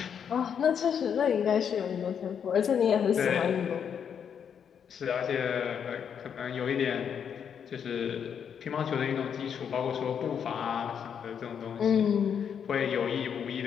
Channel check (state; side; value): quieter; right; 7.7 dB